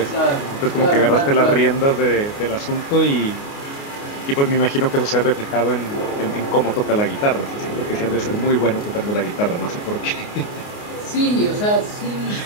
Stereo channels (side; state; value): right; late; 29 ms